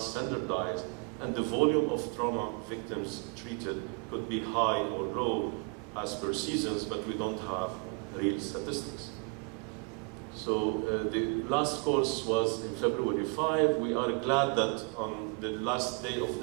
standardized, and the volume of trauma victims treated could be high or low as per seasons, but we don't have real statistics. So the last course was in February 5. We are glad that on the last day of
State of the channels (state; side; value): quieter; left; 33.9 dB